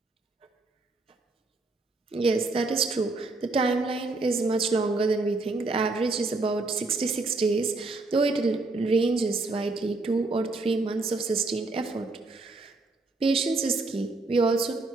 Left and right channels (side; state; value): left; quieter; 3.4 dB